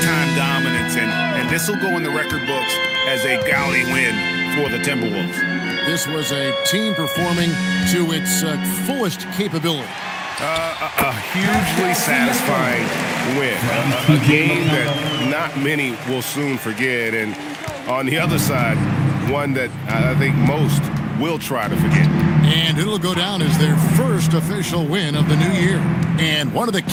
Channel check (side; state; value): both; identical; correlation 1.00